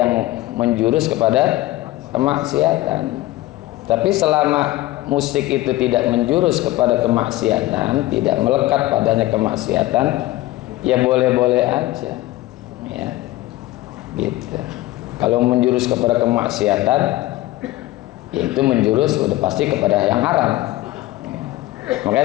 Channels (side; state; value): right; quieter; 17.1 dB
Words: menjurus kepada kemaksiatan. Tapi selama musik itu tidak menjurus kepada kemaksiatan, tidak melekat padanya kemaksiatan, ya boleh-boleh aja, ya, gitu. Kalau menjurus kepada kemaksiatan, ya itu menjurus udah pasti kepada yang haram.